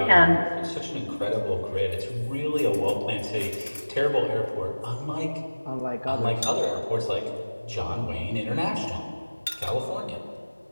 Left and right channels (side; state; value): both; inverted; correlation -1.00